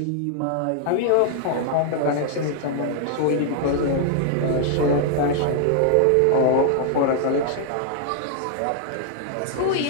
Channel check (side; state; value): both; different; correlation -0.01